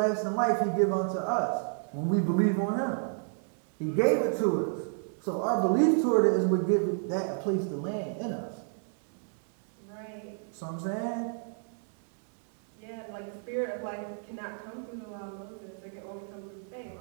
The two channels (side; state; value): left; silent; 57 dB below the other